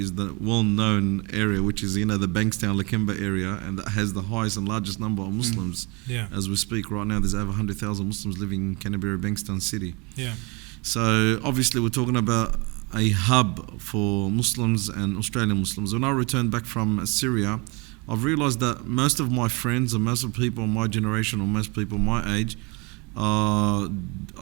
the well-known area, which is, the Bankstown, Lakemba area, and that has the highest and largest number of Muslims. As we speak right now, there's over 100,000 Muslims living in Canterbury, Bankstown City. So obviously we're talking about a hub for Muslims and Australian Muslims. When I returned back from Syria, I've realised that most of my friends and most of people my generation or most people my age are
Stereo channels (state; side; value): quieter; left; 29.1 dB